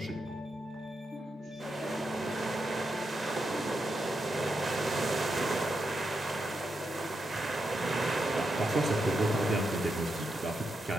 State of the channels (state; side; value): normal; both; correlation 0.85